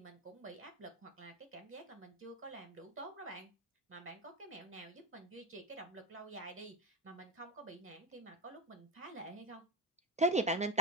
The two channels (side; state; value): both; normal; correlation 0.19